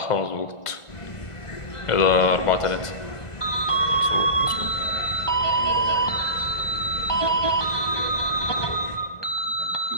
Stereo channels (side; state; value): right; late; 1.5 ms